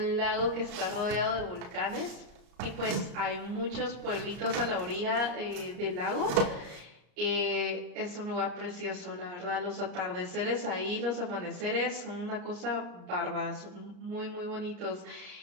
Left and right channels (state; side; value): late; left; 34 ms